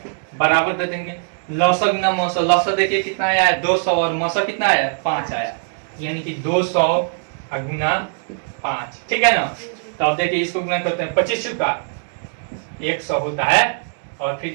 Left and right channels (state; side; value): silent; left; digital silence